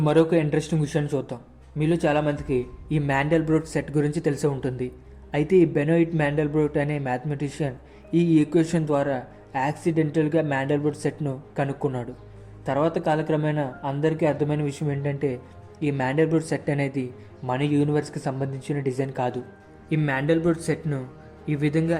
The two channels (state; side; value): identical; both; correlation 1.00